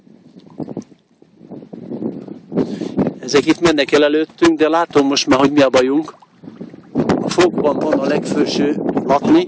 Ezek itt mennek el előttünk, de látom most már, hogy mi a bajunk. A fogban van a legfelső latni.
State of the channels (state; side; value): identical; both; correlation 1.00